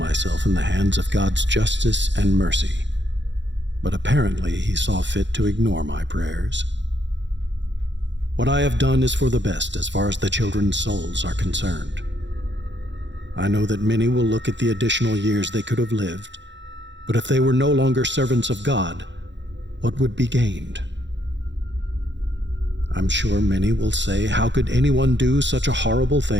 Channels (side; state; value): left; late; 0.53 ms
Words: in the hands of God's justice and mercy, but apparently He saw fit to ignore my prayers. What I have done is for the best as far as the children's souls are concerned. I know that many will look at the additional years they could have lived, but if they were no longer servants of God, what would be gained? I'm sure many will say, how could anyone do such a horrible